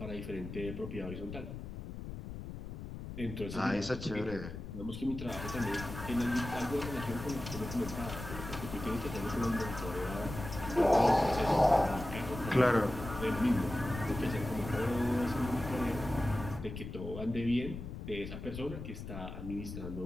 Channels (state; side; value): noise; left; rumble, 9 dB below the sound